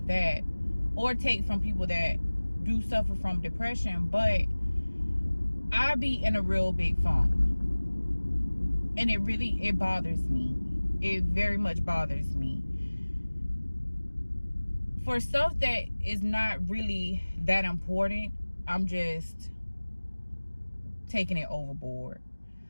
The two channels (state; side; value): inverted; both; correlation -1.00